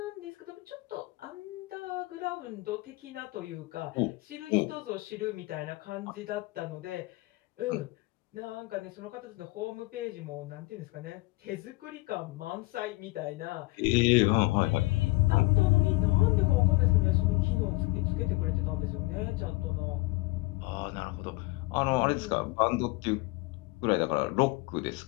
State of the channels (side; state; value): right; quieter; 22.5 dB